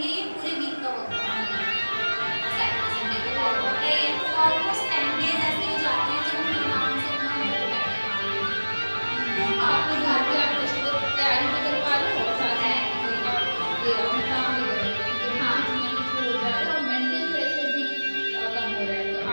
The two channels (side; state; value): both; inverted; correlation -1.00